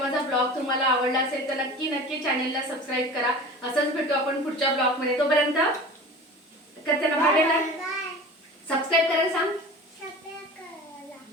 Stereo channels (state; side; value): normal; both; correlation 0.37